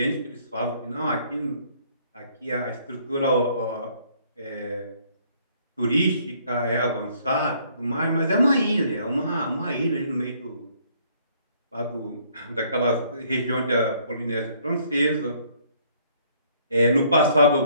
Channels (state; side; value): inverted; both; correlation -0.63